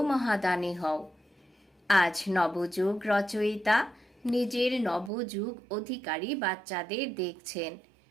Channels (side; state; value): left; drops out; at 5.1 s